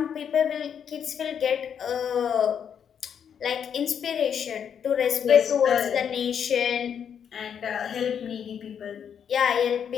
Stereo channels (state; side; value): quieter; right; 8.0 dB